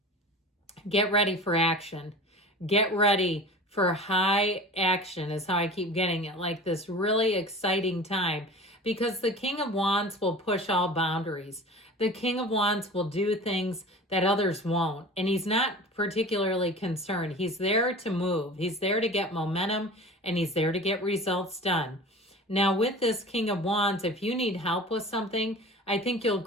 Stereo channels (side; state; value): both; normal; correlation 0.38